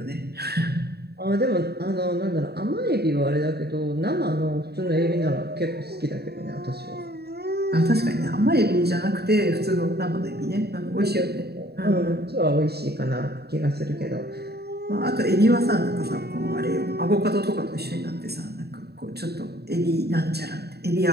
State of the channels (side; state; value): left; late; 0.47 ms